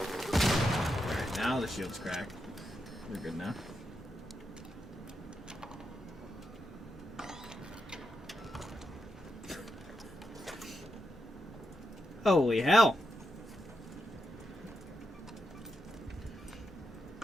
Alright, now the shield's cracked. We're good now. Holy hell!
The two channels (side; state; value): both; normal; correlation 0.85